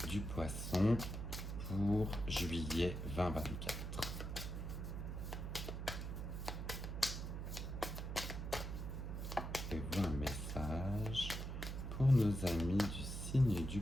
du poisson pour juillet 2024. Avez-vous un message pour nos amis du signe du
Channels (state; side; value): noise; right; hum, 5 dB below the sound